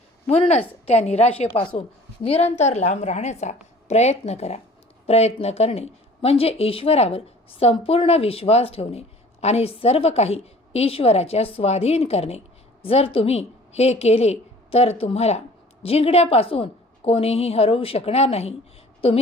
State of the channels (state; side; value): normal; both; correlation 0.49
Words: म्हणूनच त्या निराशेपासून निरंतर लांब राहण्याचा प्रयत्न करा. प्रयत्न करणे म्हणजे ईश्वरावर संपूर्ण विश्वास ठेवणे आणि सर्व काही ईश्वराच्या स्वाधीन करणे. जर तुम्ही हे केले तर तुम्हाला जिंकण्यापासून कोणीही हरवू शकणार नाही.